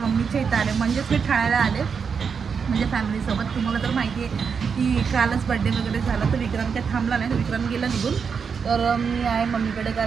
इथं आले, म्हणजेच मी ठाण्याला आले म्हणजे फॅमिलीसोबत. तुम्हाला तर माहिती आहे की कालच बड्डे वगैरे झाला, तर विक्रम काय थांबला नाही, तर विक्रम गेला निघून. तर मी आहे मम्मीकडे,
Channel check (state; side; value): quieter; left; 6.1 dB